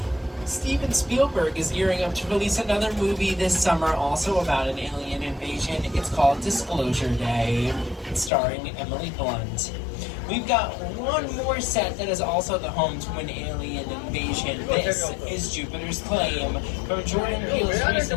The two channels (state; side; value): drops out; right; at 8.3 s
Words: Steven Spielberg is gearing up to release another movie this summer, also about an alien invasion. It's called Disclosure Day, starring Emily Blunt. We've got one more set that is also the home to an alien invasion. This is Jupiter's Claim from Jordan Peele's